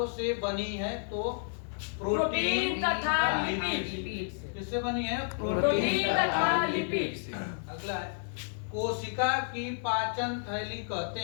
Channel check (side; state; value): right; silent; 57 dB below the other